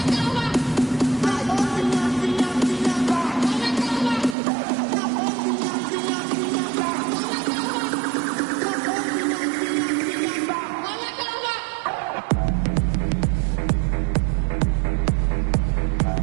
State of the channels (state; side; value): drops out; left; at 4.4 s